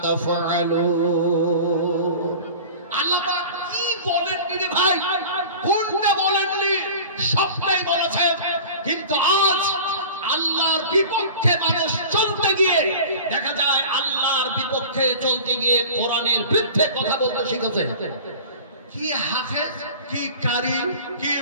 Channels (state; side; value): inverted; both; correlation -0.39